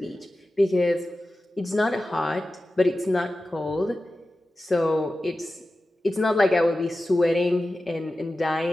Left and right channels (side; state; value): both; normal; correlation 0.94